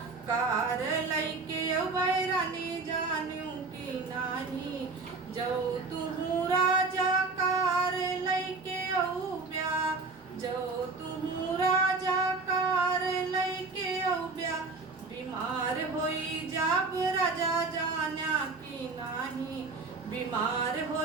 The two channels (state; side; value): quieter; left; 4.0 dB